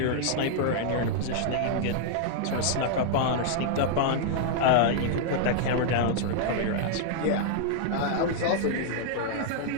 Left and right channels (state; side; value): different; both; correlation 0.00